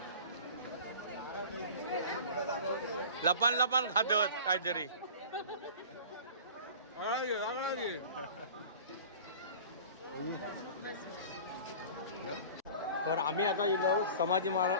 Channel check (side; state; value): both; inverted; correlation -0.40